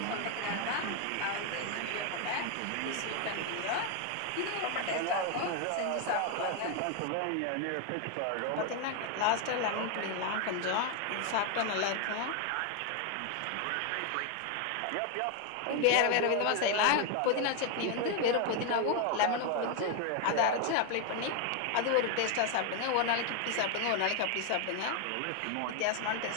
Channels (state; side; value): different; both; correlation 0.01